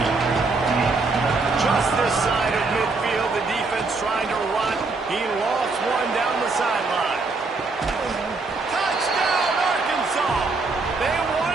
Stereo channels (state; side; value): quieter; left; 3.8 dB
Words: Just this side of midfield, the defense trying to run. He lost one down the sideline. Touchdown, Arkansas! They won